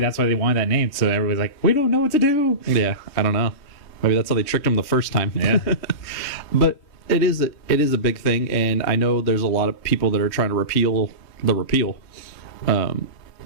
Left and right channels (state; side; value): late; right; 3.2 ms